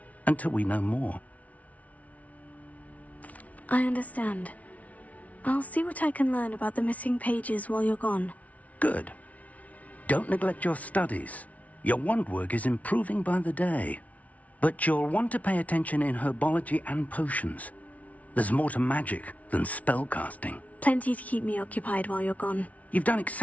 until we know more. I understand. I'll see what I can learn about the missing pages while you're gone. Good. Don't neglect your studies. Your wand work is improving by the day. But you'll want to pay attention in herbology and potions. There's more to magic than spellcasting. Plenty to keep me occupied while you're gone. You've done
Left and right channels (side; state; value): right; late; 0.069 ms